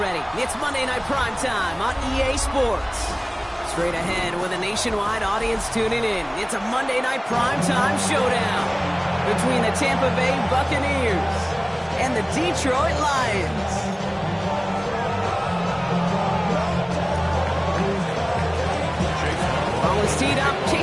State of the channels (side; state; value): both; identical; correlation 1.00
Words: It's Monday Night Primetime on EA Sports. Straight ahead with a nationwide audience tuning in, it's a Monday Night Primetime showdown between the Tampa Bay Buccaneers and the Detroit Lions. Ball is teed up,